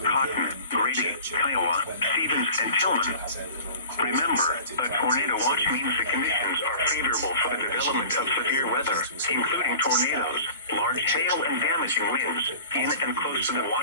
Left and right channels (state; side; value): inverted; both; correlation -0.41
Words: Grady, Kiowa, Stevens, and Tillman. Remember, a tornado watch means the conditions are favorable for the development of severe weather, including tornadoes, large hail, and damaging winds in and close to the